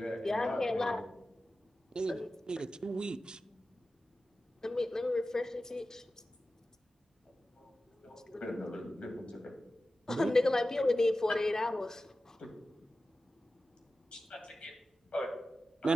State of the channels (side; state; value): both; normal; correlation 0.94